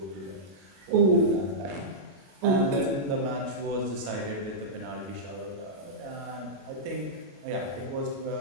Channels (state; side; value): late; left; 21 ms